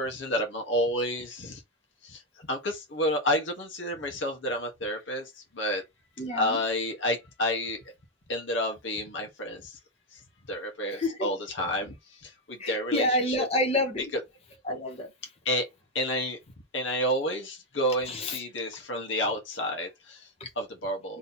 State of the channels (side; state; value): both; normal; correlation 0.04